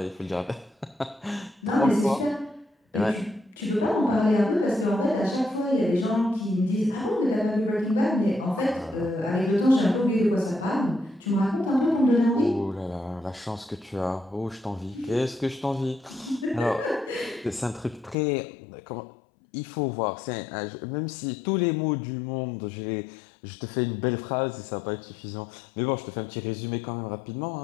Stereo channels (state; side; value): drops out; right; at 18.2 s